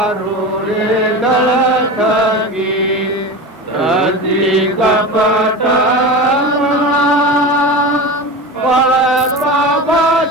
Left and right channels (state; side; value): normal; both; correlation 0.27